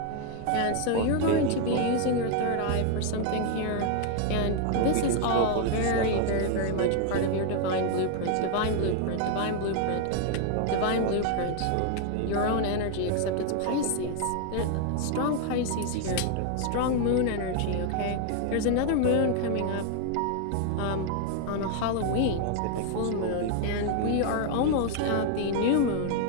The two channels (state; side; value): different; both; correlation 0.00